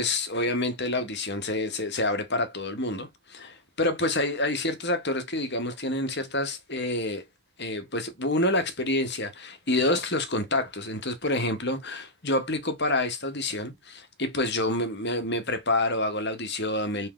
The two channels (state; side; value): normal; both; correlation -0.05